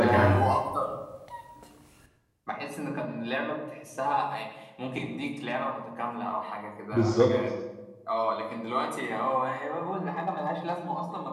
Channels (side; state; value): both; identical; correlation 1.00